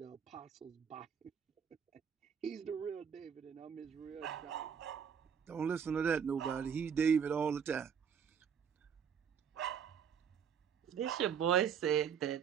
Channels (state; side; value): quieter; left; 7.6 dB